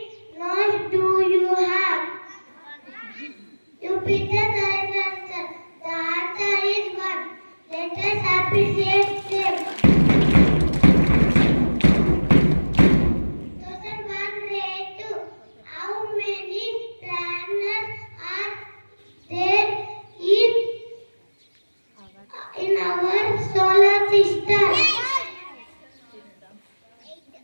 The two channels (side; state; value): both; inverted; correlation -1.00